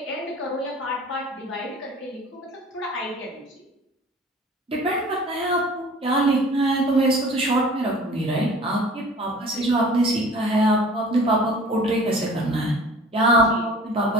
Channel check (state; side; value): normal; both; correlation 0.45